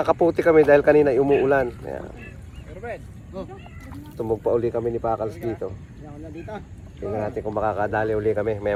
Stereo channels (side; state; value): both; identical; correlation 1.00